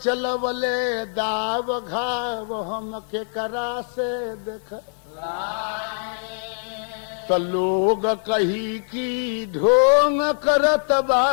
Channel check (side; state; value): right; silent; digital silence